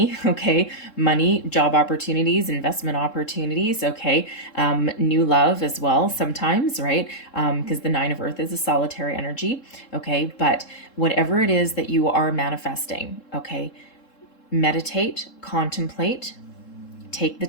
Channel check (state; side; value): late; right; 3.7 ms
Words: Okay, money, job opportunities, investment opportunities. Okay, new love as well sometimes, right? Because the 9 of earth is a solitary energy. Okay, but whatever it is that you are manifesting, okay, meditate, contemplate, take the